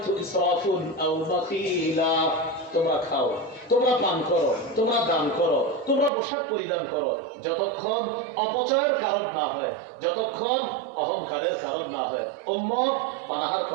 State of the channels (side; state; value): left; drops out; at 6.1 s